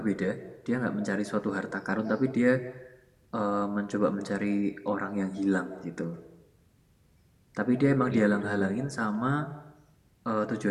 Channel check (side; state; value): both; identical; correlation 1.00